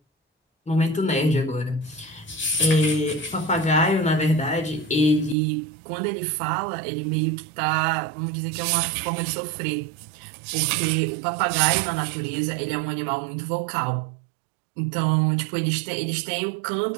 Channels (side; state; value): left; drops out; at 5.4 s